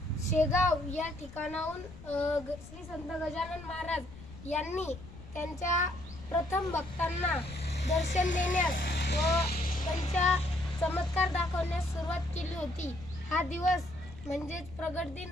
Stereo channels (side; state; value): left; noise; rumble, 16 dB below the sound